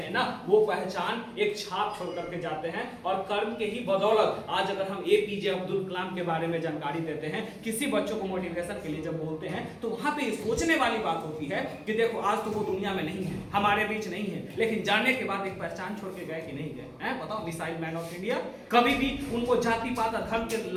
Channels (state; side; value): identical; both; correlation 1.00